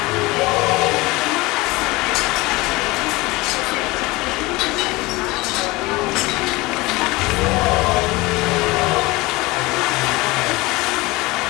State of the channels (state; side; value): quieter; right; 22.0 dB